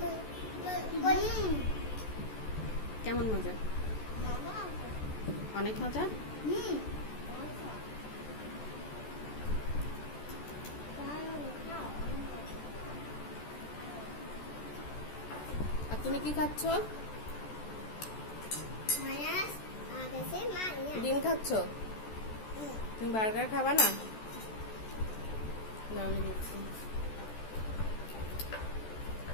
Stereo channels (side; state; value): right; late; 14 ms